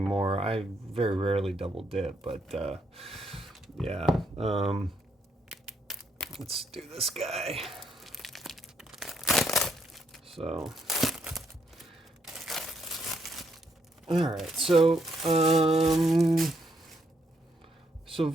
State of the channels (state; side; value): normal; both; correlation 0.75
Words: I very rarely double dip, but yeah. Let's do this guy. So, all right. So